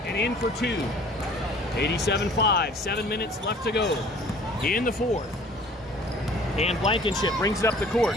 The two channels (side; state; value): both; normal; correlation 0.51